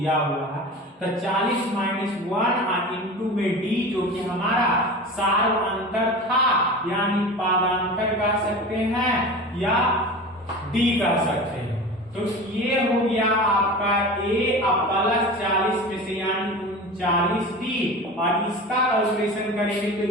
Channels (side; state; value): both; normal; correlation 0.33